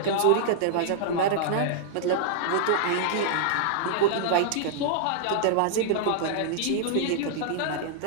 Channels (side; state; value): both; different; correlation -0.01